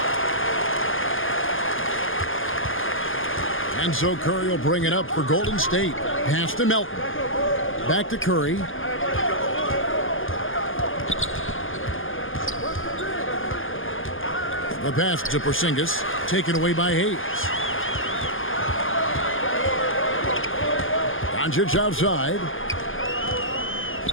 And so Curry will bring it up for Golden State. Pass to Melton. Back to Curry. The pass to Porzingis, taken away by Hayes. Doncic outside.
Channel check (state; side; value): late; right; 0.58 ms